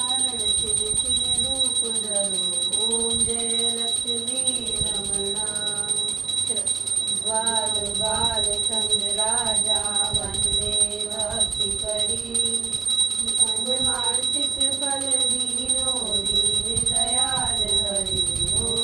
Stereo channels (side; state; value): left; quieter; 5.9 dB